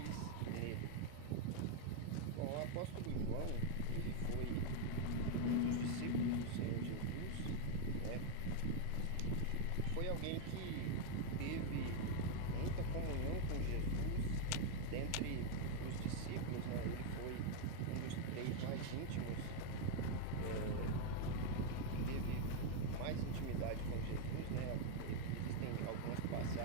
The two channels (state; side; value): different; both; correlation 0.00